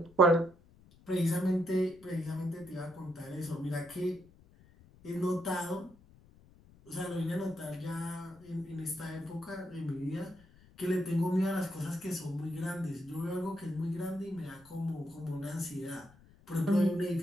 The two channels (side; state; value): left; noise; rumble, 25 dB below the sound